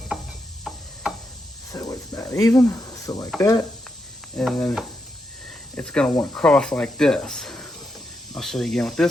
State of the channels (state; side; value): normal; both; correlation 0.83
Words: so it's about even, so like that, and then it's going to want to cross like this. I'll show you again with